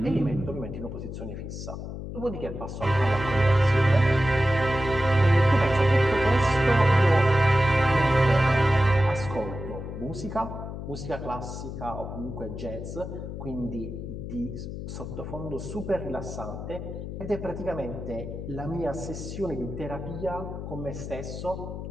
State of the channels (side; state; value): left; noise; hum, 8 dB below the sound